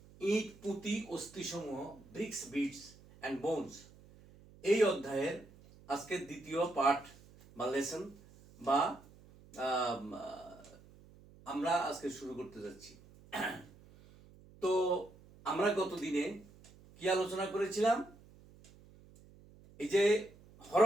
ইট পুঁতি অস্থিসমূহ ব্রিক্স বিটস অ্যান্ড বোনস। এই অধ্যায়ের আজকের দ্বিতীয় পাঠ বা লেসন বা আমরা আজকে শুরু করতে যাচ্ছি। তো আমরা গত দিনে কি আলোচনা করেছিলাম? এই যে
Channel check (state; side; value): noise; right; hum, 23 dB below the sound